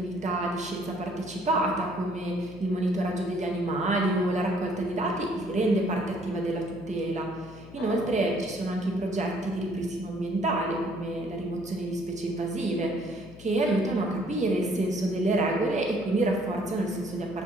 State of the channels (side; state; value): left; noise; hum, 17 dB below the sound